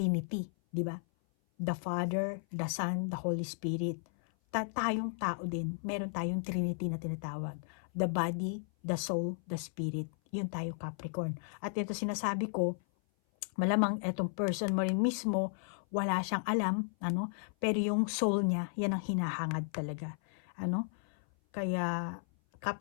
di ba? The Father, the Son, the Holy Spirit. Tayong tao din, meron tayong Trinity na tinatawag. The body, the soul, the spirit. Yun tayo, Capricorn. At ito sinasabi ko, malamang etong person mo rin mismo, wala siyang alam, pero yung soul niya, yan ang hinahangad talaga. Kaya,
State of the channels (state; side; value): silent; right; 55 dB below the other